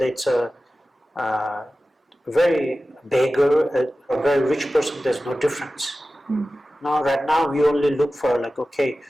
it's a very beggar, a very rich person, there's no difference. Now, right now, we only look for okay,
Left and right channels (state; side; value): normal; both; correlation 0.95